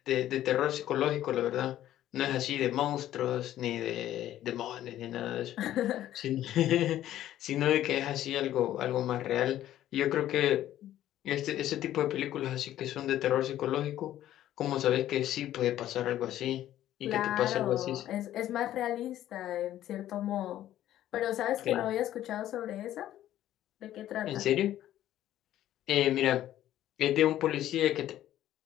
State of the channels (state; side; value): quieter; right; 12.7 dB